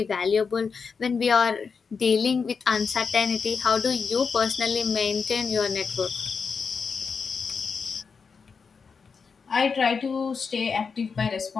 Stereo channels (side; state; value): right; quieter; 5.5 dB